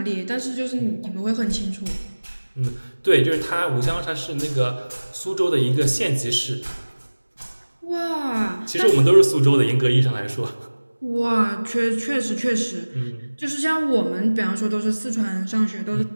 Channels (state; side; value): inverted; both; correlation -1.00